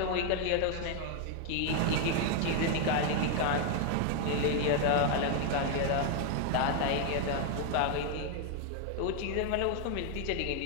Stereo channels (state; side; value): different; both; correlation 0.00